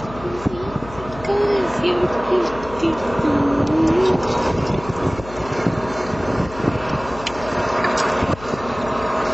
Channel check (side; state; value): left; noise; hum, 16 dB below the sound